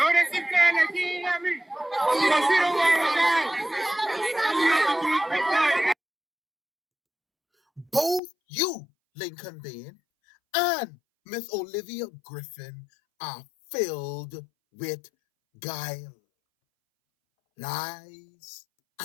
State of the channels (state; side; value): drops out; right; at 8.2 s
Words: him saying that he ain't hear me. Because he don't want to resign. Both you, Lincoln Bain, and Miss Olivia Griffin are filled with guile, lies,